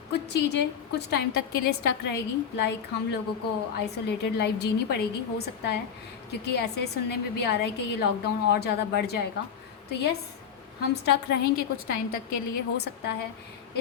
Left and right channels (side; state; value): right; quieter; 7.6 dB